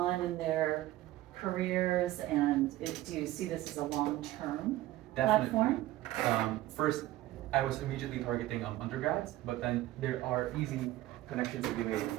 in their careers, and do you see this as a long-term Definitely. platform? First, I was immediately targeting undergrads, but then there are easy connections to be made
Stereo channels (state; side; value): quieter; left; 15.9 dB